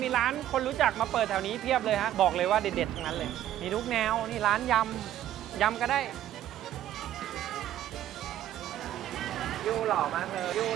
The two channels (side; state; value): left; quieter; 12.3 dB